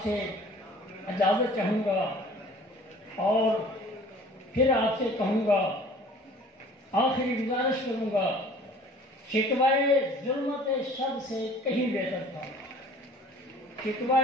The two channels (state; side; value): normal; both; correlation 0.49